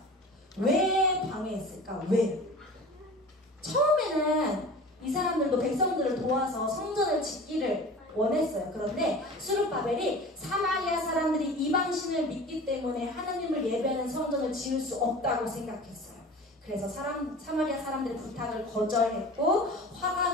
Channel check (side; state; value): both; normal; correlation 0.38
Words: 왜 방해했을까? 왜? 처음에는 이 사람들도 백성들을 도와서 성전을 짓기를 원했어요. 그런데 스룹바벨이 사마리아 사람들이 이방신을 믿기 때문에 하나님을 예배하는 성전을 지을 수 없다고 생각했어요. 그래서 사마리아 사람들의 부탁을 거절했고 화가